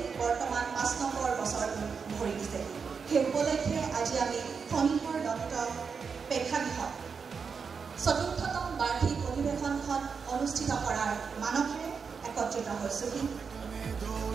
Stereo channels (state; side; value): quieter; left; 5.7 dB